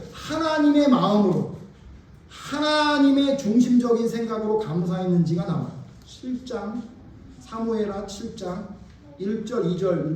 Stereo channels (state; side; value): identical; both; correlation 1.00